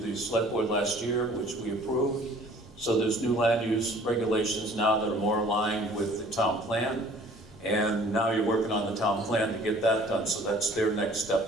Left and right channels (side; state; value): both; normal; correlation 0.52